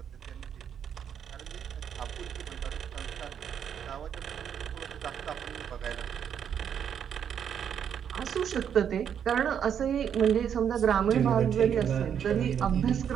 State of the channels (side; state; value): left; quieter; 8.4 dB